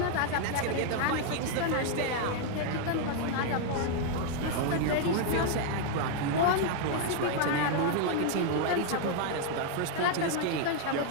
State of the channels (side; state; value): both; different; correlation 0.00